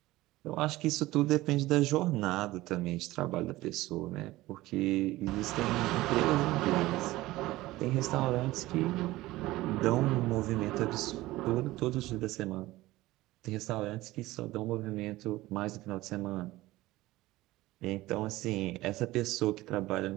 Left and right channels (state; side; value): quieter; left; 17.9 dB